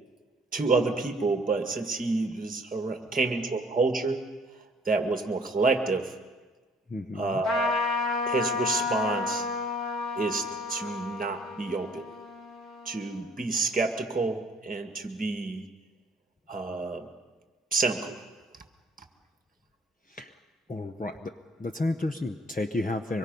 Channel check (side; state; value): both; normal; correlation 0.58